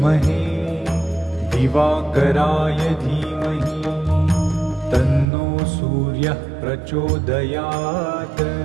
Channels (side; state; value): left; drops out; at 5.2 s